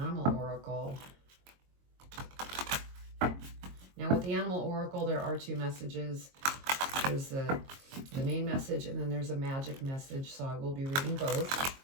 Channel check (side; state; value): left; late; 22 ms